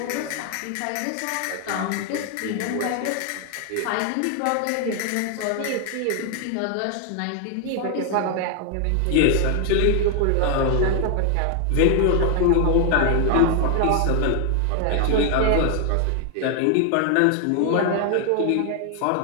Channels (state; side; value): different; both; correlation 0.00